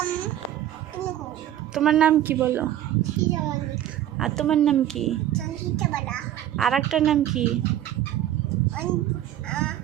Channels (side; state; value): left; quieter; 12.1 dB